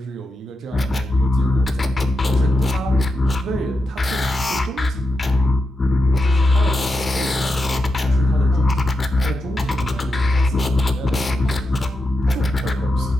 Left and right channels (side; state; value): both; normal; correlation 0.87